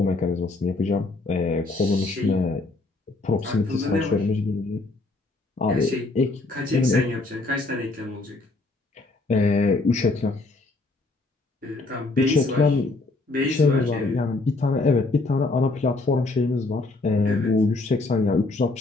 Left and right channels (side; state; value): right; quieter; 3.3 dB